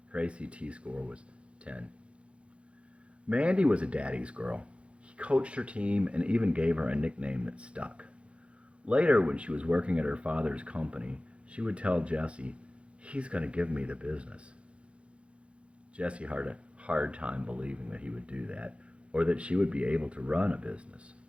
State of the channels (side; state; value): left; late; 0.060 ms